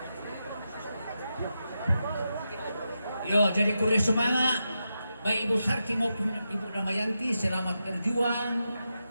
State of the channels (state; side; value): inverted; both; correlation -0.88